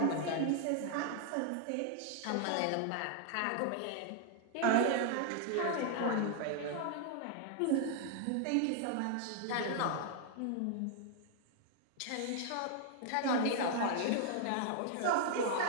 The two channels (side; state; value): both; different; correlation 0.00